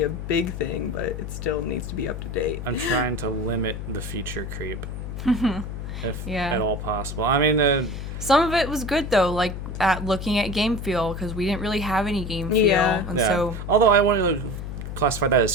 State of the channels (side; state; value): left; noise; hum, 7 dB below the sound